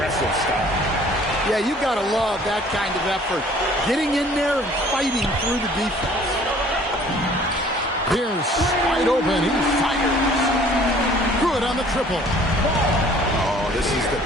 style. Yeah, you got to love that kind of effort. Getting in there and fighting through the defense. Here's wide open. He fires. Good on the triple. Oh, this is the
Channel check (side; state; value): both; normal; correlation 0.54